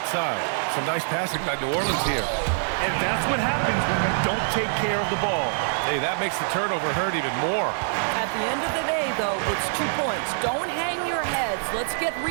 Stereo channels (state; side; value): silent; left; digital silence